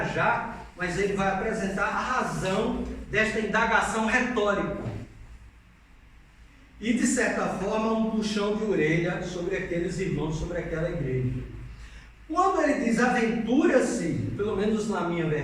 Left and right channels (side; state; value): both; identical; correlation 1.00